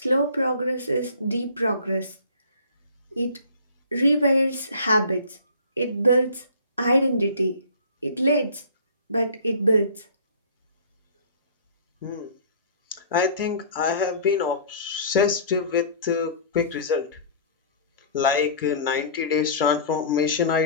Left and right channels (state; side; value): inverted; both; correlation -0.45